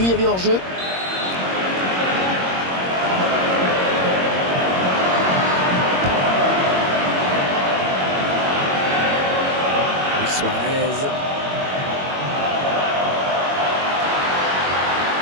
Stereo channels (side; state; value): left; late; 21 ms